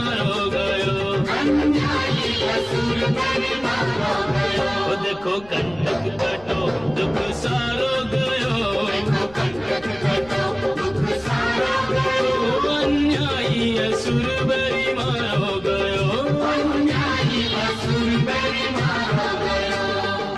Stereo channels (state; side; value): noise; left; rumble, 23 dB below the sound